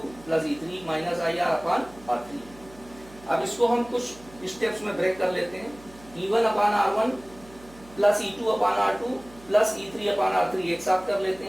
plus E3 minus IR upon R3। अब इसको हम कुछ स्टेप्स में ब्रेक कर लेते हैं। E1 upon R1 plus E2 upon R2 plus E3 upon R3 एक साथ कर लेते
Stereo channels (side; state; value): right; noise; hum, 22 dB below the sound